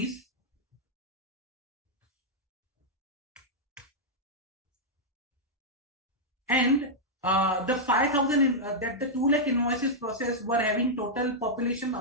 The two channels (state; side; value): normal; both; correlation -0.06